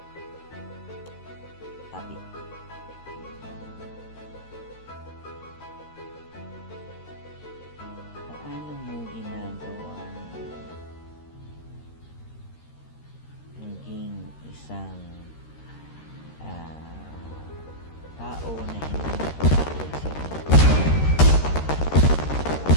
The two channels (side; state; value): right; late; 13 ms